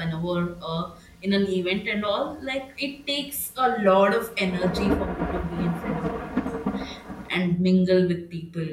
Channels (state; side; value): identical; both; correlation 1.00